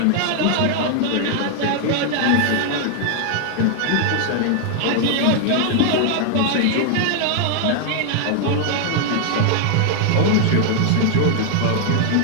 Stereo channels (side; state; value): both; different; correlation 0.00